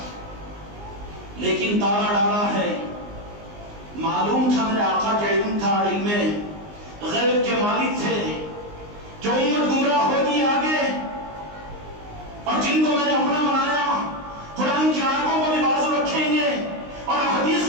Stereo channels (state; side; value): late; left; 19 ms